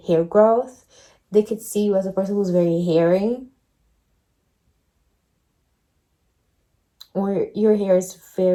hair growth. They could see you as a person who's very hairy, or your hair is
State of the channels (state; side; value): identical; both; correlation 1.00